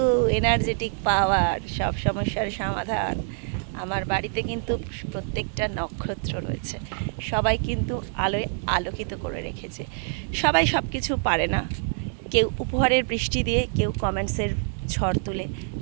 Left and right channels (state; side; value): silent; left; 61 dB below the other